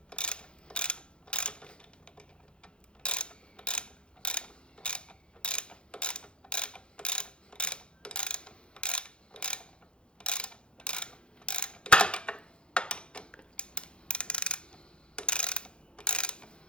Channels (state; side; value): late; right; 0.054 ms